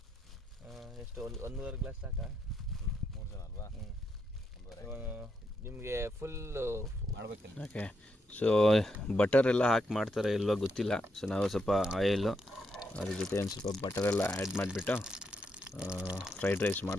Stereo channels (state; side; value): normal; both; correlation 0.80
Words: ಎಷ್ಟು 1.5 ಗ್ಲಾಸ್ ಸಾಕಾ? 3 ಜನ ಅಲ್ವಾ? ನಿಮಗೆ ಫುಲ್ ಮಾಡಬೇಕಿಲ್ಲ. ಓಕೆ, ಸೊ ಬಟರ್ ಎಲ್ಲ ಹಾಕಿ ಮಾಡ್ತಾರೆ ಇಲ್ವೋ ಗೊತ್ತಿಲ್ಲ. ಸೊ ನಾವು ಸ್ವಲ್ಪ ಆಯಿಲು ಅದ್ರ ಜೊತೆ ಒಂದು ಸ್ವಲ್ಪ ಬಟರೆಲ್ಲ ಆ್ಯಡ್ ಮಾಡಿಬಿಟ್ಟು ಫ್ರೈಡ್ ರೈಸ್